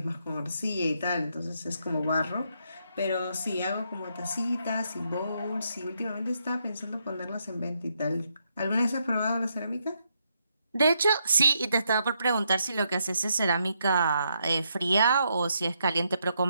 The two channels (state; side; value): inverted; both; correlation -0.78